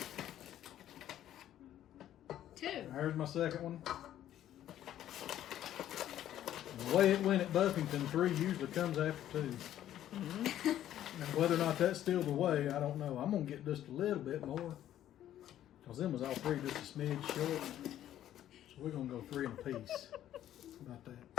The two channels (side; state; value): right; quieter; 11.9 dB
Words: 2. There's my second one. And the way it went at Buffington, 3 usually comes after 2. And whether or not that's still the way, I don't know. I'm going to get just a little bit more. Because them was all 3 just a smidge short. So we're going to go 3 in a piece. How about that?